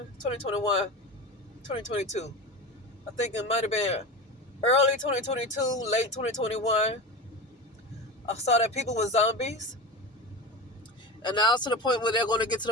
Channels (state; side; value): normal; both; correlation 0.26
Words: I think it might have been early 2022, late 2021. I saw that people were zombies. And now it's to the point where they're going to get to